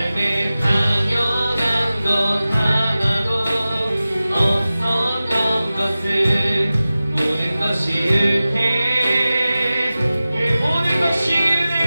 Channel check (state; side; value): inverted; both; correlation -0.96